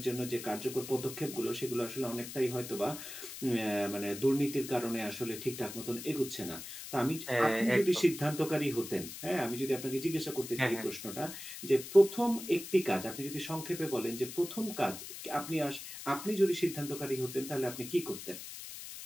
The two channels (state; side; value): noise; left; hiss, 10 dB below the sound